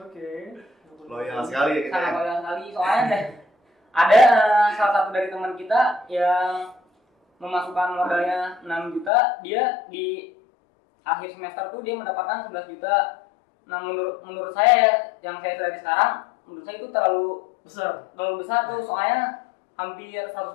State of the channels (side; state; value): right; drops out; at 9.1 s